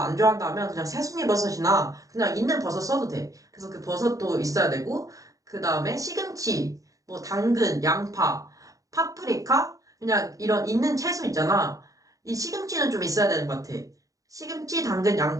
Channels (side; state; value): left; late; 0.16 ms